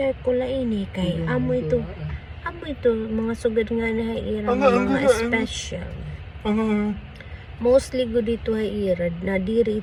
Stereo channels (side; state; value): both; identical; correlation 1.00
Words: ko la ini kay amo ito mga sugad nga na irang mga special. Mostly go dito ay irad na diri